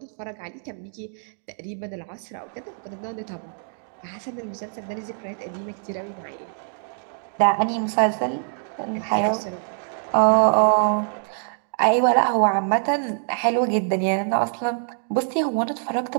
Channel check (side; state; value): left; silent; digital silence